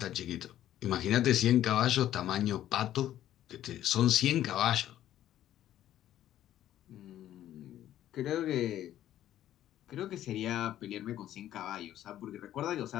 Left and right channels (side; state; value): right; quieter; 12.3 dB